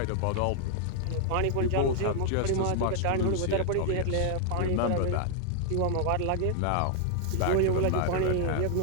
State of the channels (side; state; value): both; different; correlation 0.00